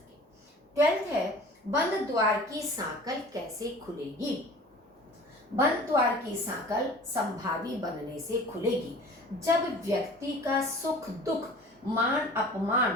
12th है बंद द्वार की सांकल कैसे खुलेगी। बंद द्वार की सांकल संभावी बनने से खुलेगी जब व्यक्ति का सुख दुख मान अपमान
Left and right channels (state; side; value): normal; both; correlation 0.44